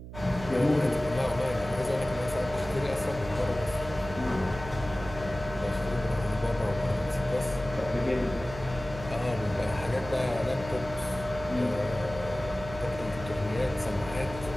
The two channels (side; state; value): right; noise; hum, 12 dB below the sound